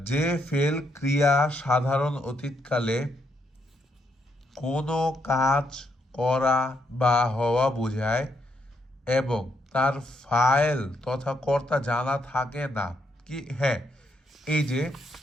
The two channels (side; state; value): both; normal; correlation 0.76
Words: যে ফেল ক্রিয়া সাধারণ অতীতকালে কোনো কাজ করা বা হওয়া বোঝায় এবং তার ফাইল তথা কর্তা জানা থাকে না, কি হ্যাঁ, এই যে